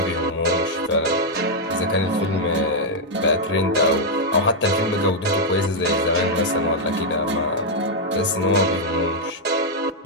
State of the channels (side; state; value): both; normal; correlation -0.02